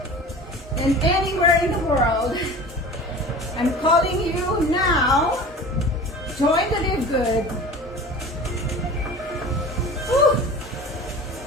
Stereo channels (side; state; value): both; normal; correlation 0.38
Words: and anywhere in the world. I'm calling you now. Join the Live Good. Whew.